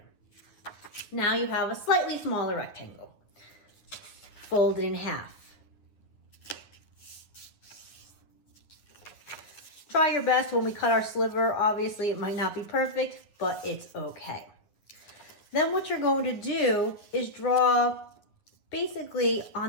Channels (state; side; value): late; right; 9.8 ms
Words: Now you have a slightly smaller rectangle. Fold it in half. Try your best when we cut our sliver. Obviously, it might not be perfect, but it's okay. Then what you're going to do is draw basically